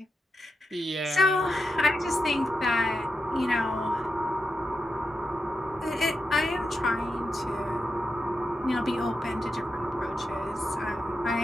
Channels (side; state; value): both; normal; correlation 0.87